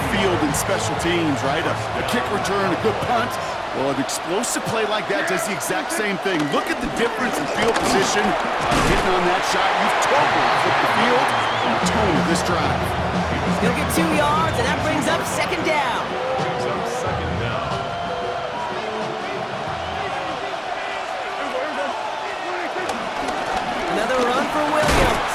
field in special teams, right? A kick return, a good punt. Well, an explosive play like that does the exact same thing. Look at the difference in field position. Hitting on that shot, you've totally flipped the field and the tone of this drive. He'll get 2 yards, and that brings up 2nd down. Another run for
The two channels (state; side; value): identical; both; correlation 1.00